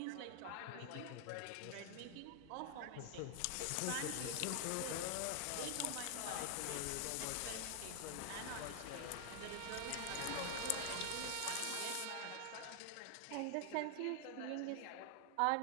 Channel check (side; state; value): both; different; correlation 0.00